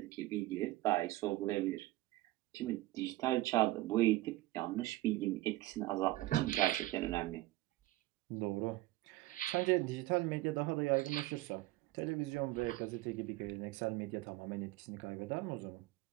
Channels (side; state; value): left; quieter; 17.6 dB